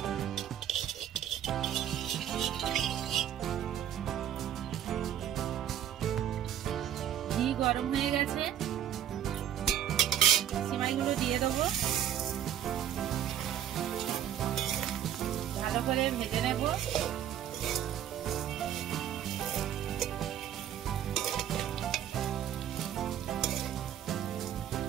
ঘি গরম হয়ে গেছে, সিমাইগুলো দিয়ে দেবো। ভালো করে ভেজে নেব।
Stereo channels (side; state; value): left; quieter; 10.3 dB